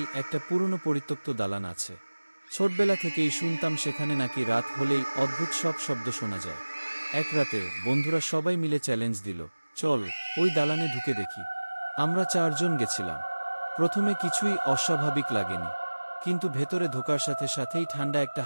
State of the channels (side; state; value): both; inverted; correlation -1.00